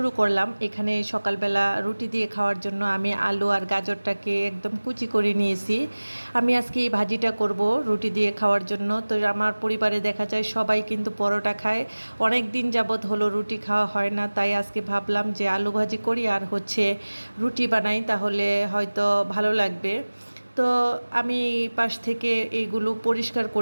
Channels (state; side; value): inverted; both; correlation -1.00